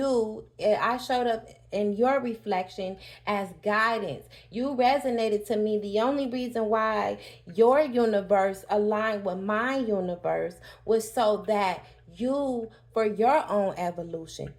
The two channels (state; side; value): identical; both; correlation 1.00